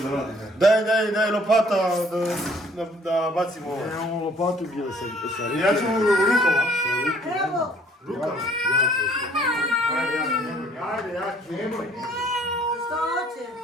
da radi, ne? Daj lopata da bacimo ovo. Imamo lopatu gdje sa Ja ću rukama. Evo, Rukama? Ajde, nemoj. što hoće?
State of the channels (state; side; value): normal; both; correlation 0.59